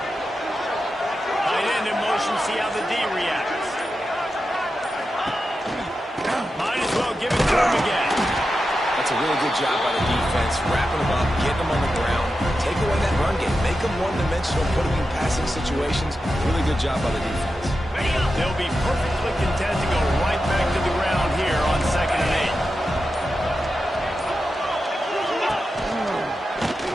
Tight end in motion, see how the D reacts. Might as well give it to him again. That's a really good job by the defense, wrapping them up, getting them on the ground, take away that run game, make them one-dimensional, put them in passing situations. Really good job by the defense. They'll be perfectly content to go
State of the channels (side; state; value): both; normal; correlation 0.90